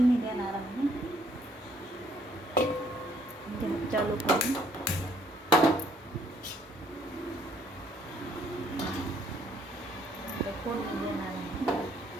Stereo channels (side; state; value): both; normal; correlation 0.65